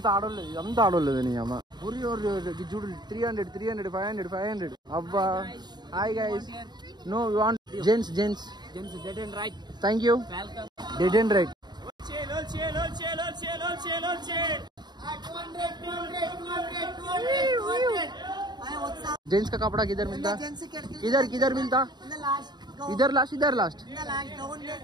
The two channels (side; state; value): left; late; 0.21 ms